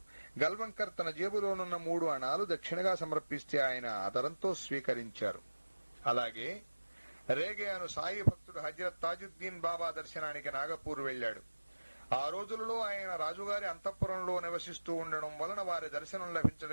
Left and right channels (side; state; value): both; inverted; correlation -1.00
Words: గల్వంకర్ తన జేబులోనున్న 3 అణాలు దక్షిణగా సమర్పిస్తే ఆయన ఆదరంతో స్వీకరించారు. అలాగే రేగే అను సాయి భక్తుడు హజరత్ తాజుద్దీన్ బాబా దర్శనానికి నాగపూర్ వెళ్లాడు. ఆ రోజులలో ఆయన రాజుగారి అంతఃపురంలో నివసిస్తూ ఉండడం వలన వారి దర్శనం